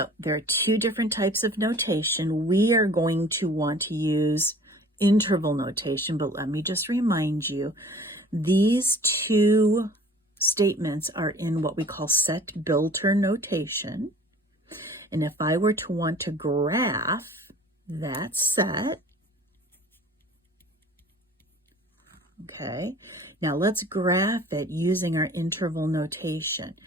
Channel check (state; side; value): normal; both; correlation 0.48